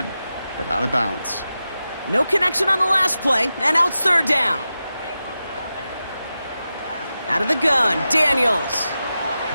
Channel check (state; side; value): inverted; both; correlation -0.92